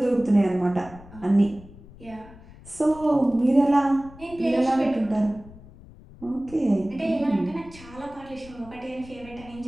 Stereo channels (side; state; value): left; noise; rumble, 20 dB below the sound